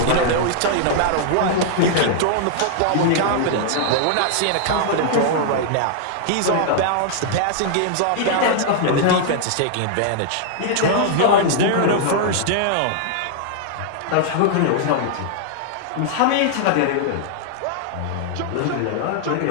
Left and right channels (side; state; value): both; different; correlation -0.01